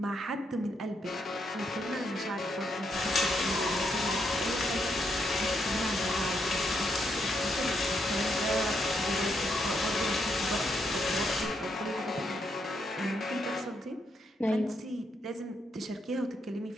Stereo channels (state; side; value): normal; both; correlation 0.78